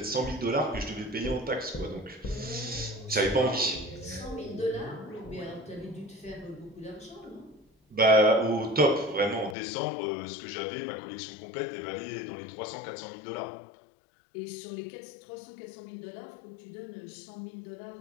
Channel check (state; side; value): drops out; right; at 9.6 s